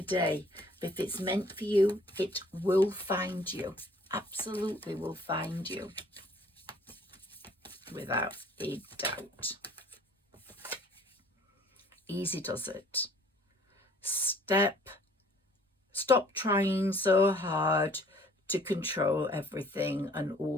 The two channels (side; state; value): both; normal; correlation 0.56